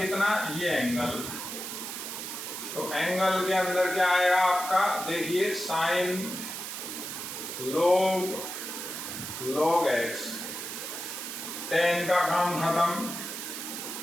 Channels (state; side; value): noise; right; hiss, 7 dB below the sound